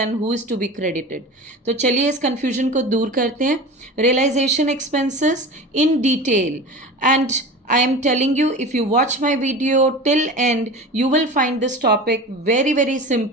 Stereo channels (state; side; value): normal; both; correlation 0.33